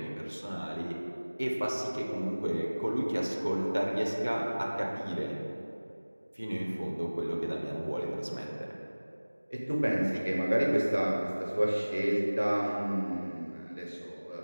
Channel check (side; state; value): both; inverted; correlation -1.00